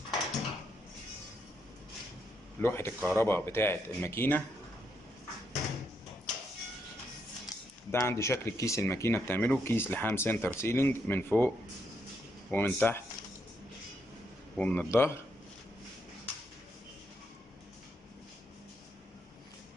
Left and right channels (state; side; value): normal; both; correlation 0.78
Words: لوحة الكهرباء بتاعة الماكينة. ده عندي شكل كيس الماكينة بتعمله، كيس لحام سنتر سيلينج من فوق ومن تحت ومن الظهر.